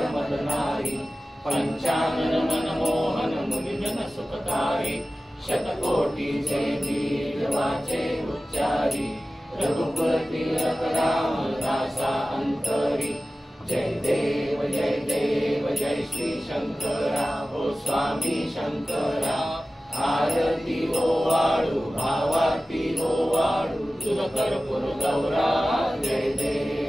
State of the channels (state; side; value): normal; both; correlation 0.96